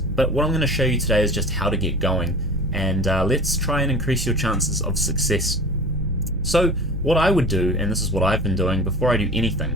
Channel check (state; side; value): noise; right; hum, 8 dB below the sound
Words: But what I'm going to show you today is just how to get going, and let's try and increase your chances of success. So what I would do, and this is what I've been doing before I do